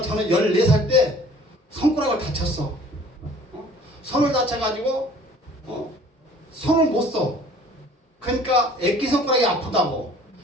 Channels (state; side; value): normal; both; correlation 0.51